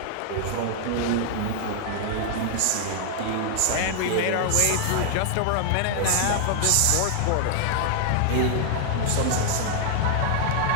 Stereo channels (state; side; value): different; both; correlation 0.00